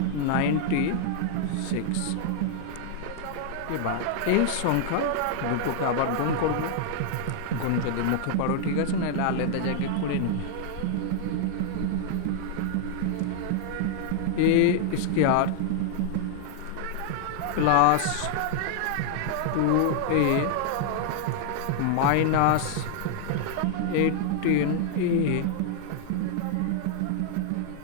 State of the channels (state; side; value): different; both; correlation -0.01